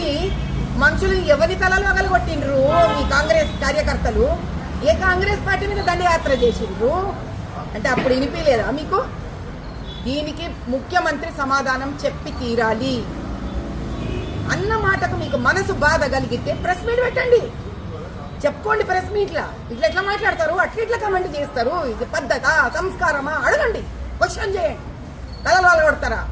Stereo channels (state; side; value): identical; both; correlation 1.00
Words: మనుషులు ఎవరి తలలు వగలగొట్టిండ్రు? మీ కాంగ్రెస్ కార్యకర్తలు ఏ కాంగ్రెస్ పార్టీ మీద దండయాత్ర చేసిండ్రు అంటే అప్పుడు వినిపించలేదా మీకు? దీనికి ముఖ్యమంత్రి సమాధానం చెప్పి తీరాలి. అన్న మాటకు మీకు మనసు బాధ కలిగితే ప్రెస్ మీట్ పెట్టండి, చెప్పుకోండి. ప్రెస్ మీట్లా ఇట్లా మాట్లాడతారు, అట్లా కమెంట్ చేస్తారు, ఇది పద్ధత సంస్కారమా అడగండి, క్వశ్చన్ చేయండి. తలలు వాళ్ళు కొడతారా?